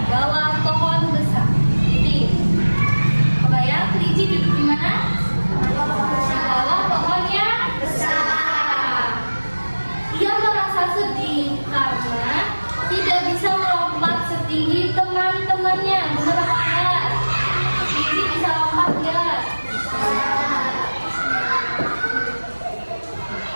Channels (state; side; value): inverted; both; correlation -1.00